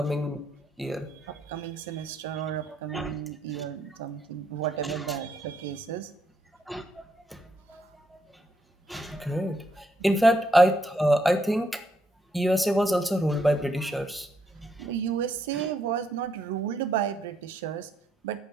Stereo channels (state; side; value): normal; both; correlation 0.75